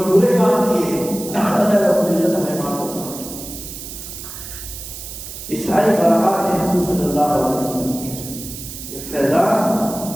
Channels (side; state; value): right; noise; hiss, 11 dB below the sound